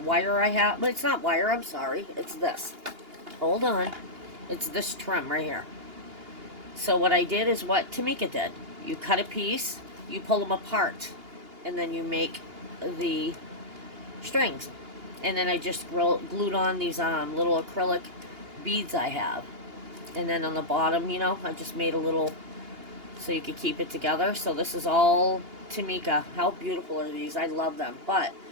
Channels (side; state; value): left; late; 2.8 ms